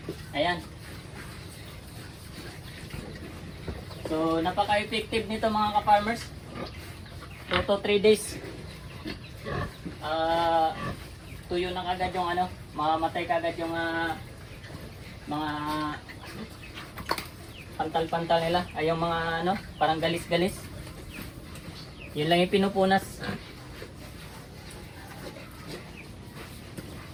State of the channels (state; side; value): identical; both; correlation 1.00